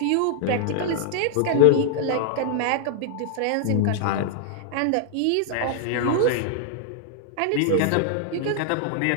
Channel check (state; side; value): different; both; correlation -0.01